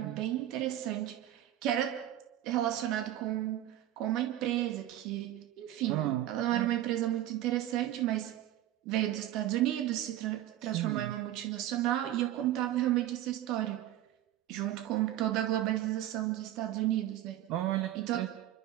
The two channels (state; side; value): quieter; left; 13.1 dB